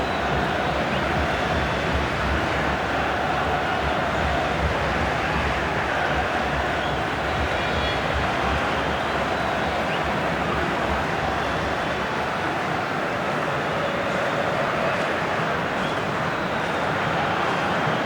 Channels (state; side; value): identical; both; correlation 1.00